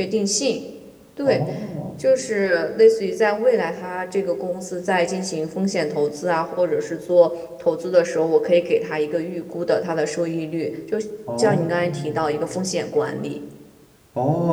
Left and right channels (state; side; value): identical; both; correlation 1.00